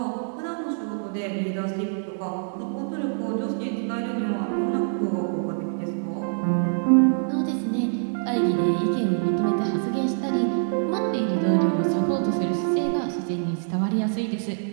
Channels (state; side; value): silent; left; digital silence